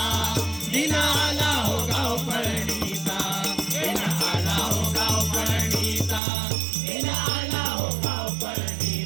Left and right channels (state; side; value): drops out; left; at 6.2 s